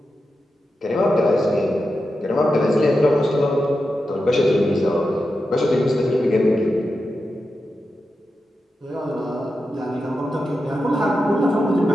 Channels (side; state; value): both; normal; correlation 0.89